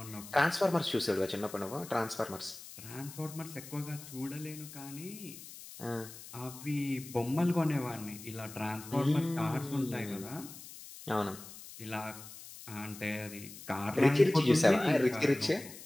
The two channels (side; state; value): left; noise; hiss, 15 dB below the sound